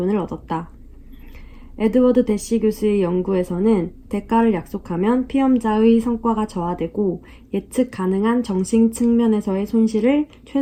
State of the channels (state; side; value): identical; both; correlation 1.00